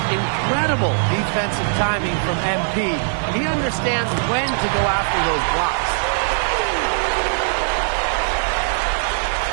incredible defensive timing from MP. He understands when to go after those blocks.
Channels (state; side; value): silent; left; digital silence